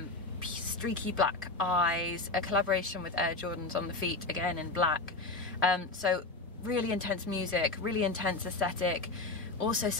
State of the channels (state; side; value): quieter; right; 3.3 dB